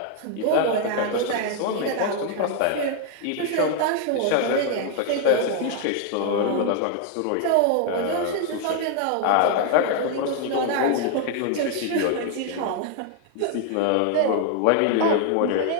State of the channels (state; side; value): different; both; correlation 0.00